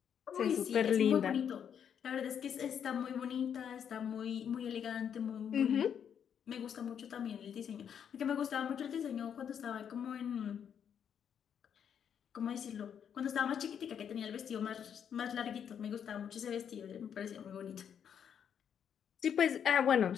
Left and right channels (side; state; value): right; quieter; 8.2 dB